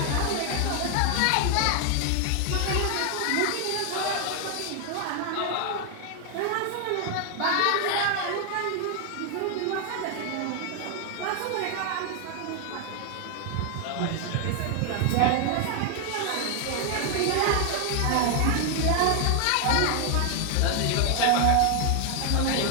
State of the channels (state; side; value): different; both; correlation 0.00